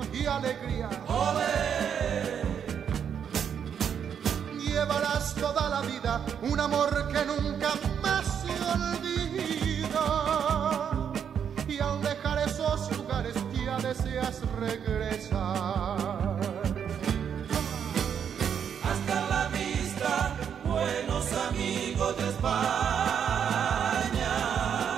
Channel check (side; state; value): left; quieter; 8.0 dB